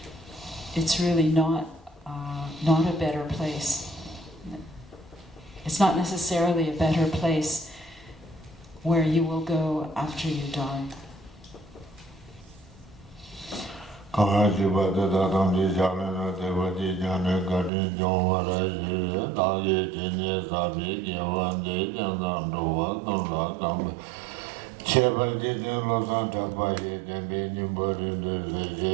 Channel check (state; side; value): drops out; left; at 17.7 s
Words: it's really not a better place. It's not necessarily a better place where you will go after you die.